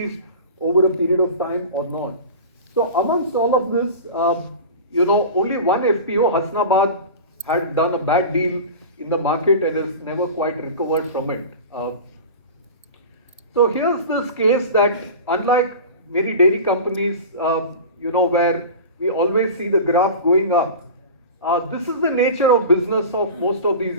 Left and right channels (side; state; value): both; inverted; correlation -0.33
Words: over a period of time or not. So amongst all of this, only one FPO, Hasnabad, had done a bad deal in the market and has never quite recovered from it. So here's this case that, unlike many dairy companies, where we always see the graph going up, this is the nature of business of most of these